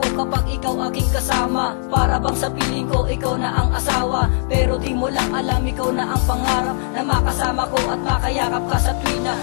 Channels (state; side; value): silent; right; 57 dB below the other